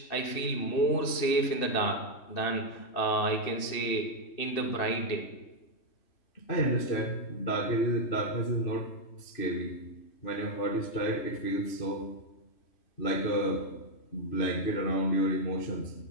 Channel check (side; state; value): right; late; 2.7 ms